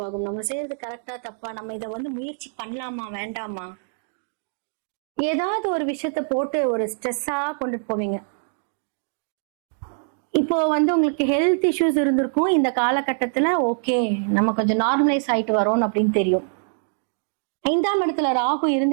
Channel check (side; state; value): left; silent; digital silence